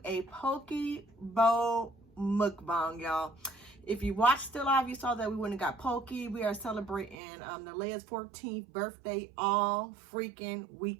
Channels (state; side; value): drops out; left; at 7.2 s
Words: a poke bowl mukbang, y'all. If you watched the live, you saw that we went and got poke. We are celebrating the LELE'S 14th birthday all freaking